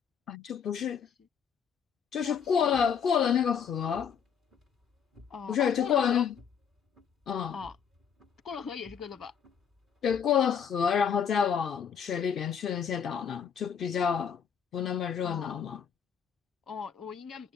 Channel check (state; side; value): quieter; right; 7.4 dB